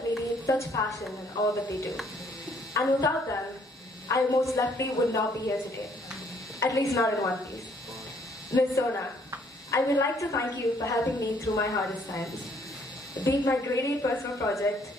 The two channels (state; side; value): normal; both; correlation 0.65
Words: radiate such passion in all that they do. And without them, I most likely would not be here today. At least not in one piece. Ms. Sona, I would like to thank you for helping me through my hardest times. Be it my grade 8 personal project,